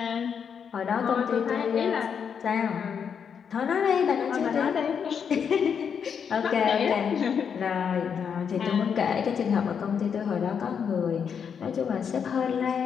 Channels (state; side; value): quieter; right; 7.1 dB